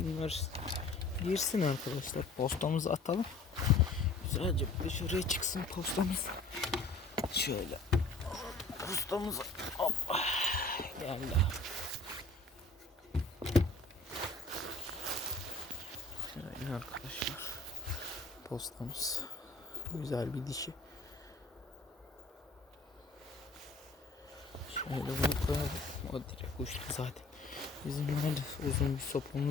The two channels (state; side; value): quieter; right; 3.1 dB